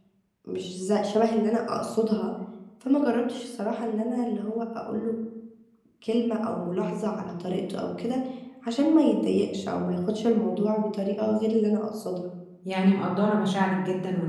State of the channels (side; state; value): both; identical; correlation 1.00